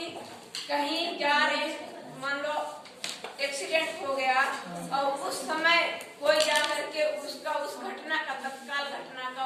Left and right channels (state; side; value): identical; both; correlation 1.00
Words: कहीं जा रहे, मान लो एक्सीडेंट हो गया और उस समय कोई जाकर के उसका उस घटना का, तत्काल घटना